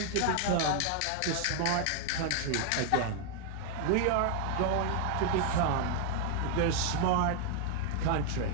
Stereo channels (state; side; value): different; both; correlation 0.00